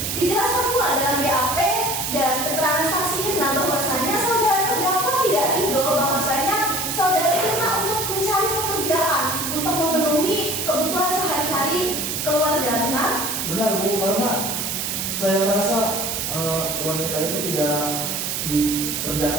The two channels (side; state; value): right; noise; hiss, 2 dB below the sound